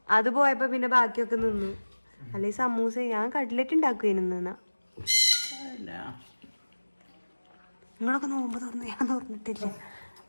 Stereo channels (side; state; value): both; inverted; correlation -1.00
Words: അത് പോയപ്പോ പിന്നെ ബാക്കിയൊക്കെ നിന്നു. അല്ലെ സമൂസ ഞാൻ കട്ട്ലറ്റ് ഉണ്ടാക്കുവായിരുന്നു. നിങ്ങളൊക്കെ നോമ്പ് തുറന്നു. ഞാൻ തുറന്നിട്ടില്ല.